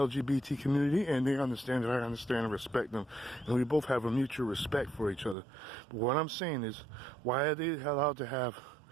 community and they understand that I understand and respect them. And we both have a mutual respect for each other. But what I'm saying is, why are they allowed to have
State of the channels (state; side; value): drops out; left; at 5.4 s